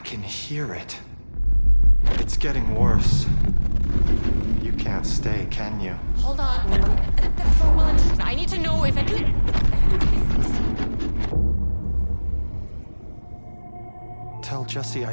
hear it. It's getting worse. You can't stay, can you? Hold on. I need to know if Tell Jesse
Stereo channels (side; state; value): both; inverted; correlation -1.00